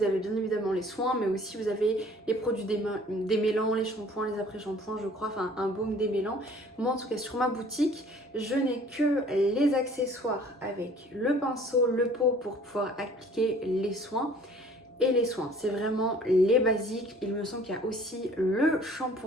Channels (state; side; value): normal; both; correlation 0.52